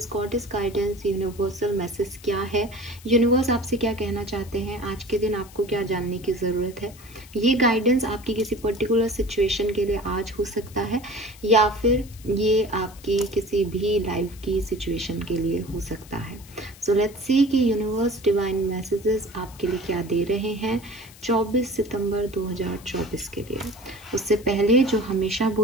goddess guidance, universal message क्या है। यूनिवर्स आपसे क्या कहना चाहते हैं, आज के दिन आपको क्या जानने की ज़रूरत है। ये गाइडेंस आपकी किसी पर्टिकुलर सिचुएशन के लिए आज हो सकता है या फिर ये आपकी किसी भी लाइफ की सिचुएशन के लिए हो सकता है। सो लेट्स सी कि यूनिवर्स डिवाइन मैसेजेस आपके लिए क्या दे रहे हैं 24 सितंबर 2024 के लिए। उससे पहले जो हमेशा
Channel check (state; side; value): noise; left; hiss, 21 dB below the sound